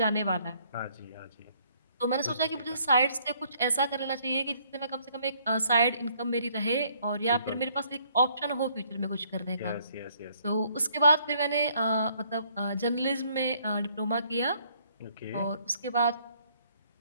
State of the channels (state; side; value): inverted; both; correlation -0.65